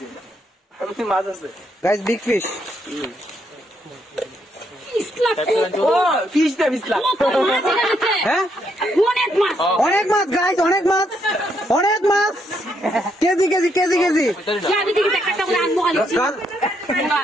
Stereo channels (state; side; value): normal; both; correlation 0.75